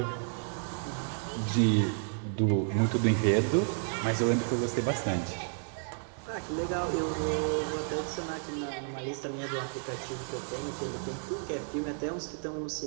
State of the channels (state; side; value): silent; left; 57 dB below the other